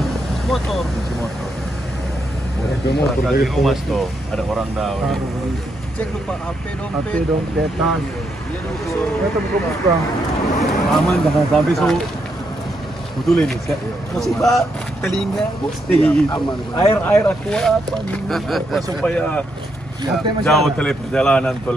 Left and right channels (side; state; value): both; normal; correlation 0.79